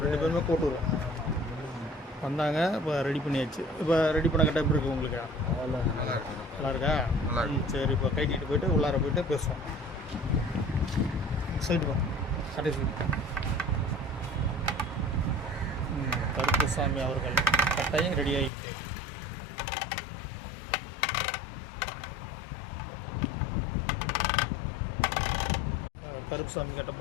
பேருமே கோட்டூர் வந்தாங்க. இப்போ ரெடி பண்ணியாச்சு. இப்போ ரெடி பண்ண கட்ட எப்படி இருக்குது உங்களுக்கு? நல்லா இருக்கா? சரி, இப்போ கைட்டிட்டு போயிட்டு உள்ளார போயிட்டு பேசுவோம். சைடு வா, கட்டை சைடு. கருப்புசாமி அவர்கள் கட்டாயம் ரெடி ஆகிட்டு கருப்புசாமி கட்ட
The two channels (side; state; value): right; drops out; at 18.5 s